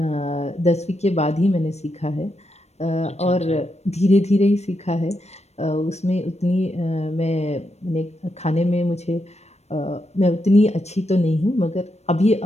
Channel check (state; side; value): late; right; 0.31 ms